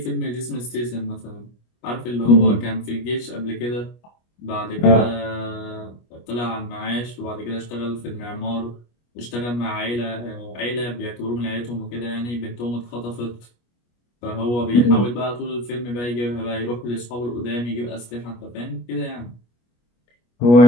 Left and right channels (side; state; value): right; late; 25 ms